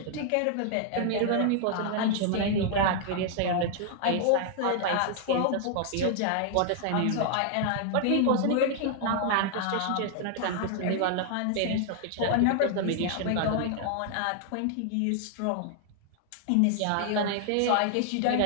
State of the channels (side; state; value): both; different; correlation 0.00